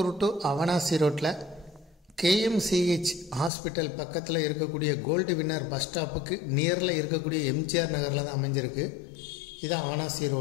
டு அவனாசி ரோட்டில் கேஎம்சிஹெச் ஹாஸ்பிட்டல் பக்கத்தில் இருக்கக்கூடிய கோல்டு வின்னர் பஸ் ஸ்டாப்புக்கு நியரில் இருக்கக்கூடிய எம்ஜிஆர் நகரில் தான் அமைஞ்சிருக்கு. இது அவனாசி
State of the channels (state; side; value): drops out; right; at 3.5 s